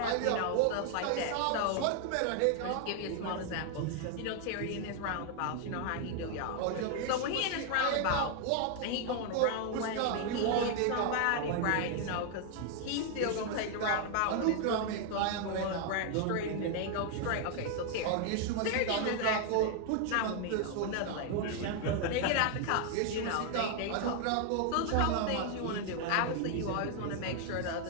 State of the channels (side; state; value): both; different; correlation 0.00